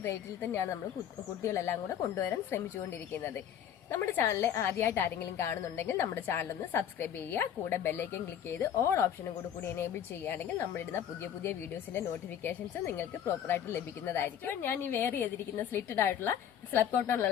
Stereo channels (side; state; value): right; quieter; 9.5 dB